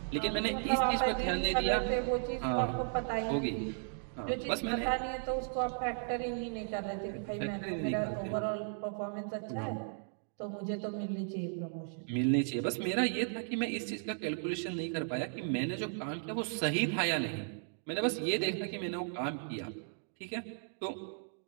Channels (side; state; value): left; silent; digital silence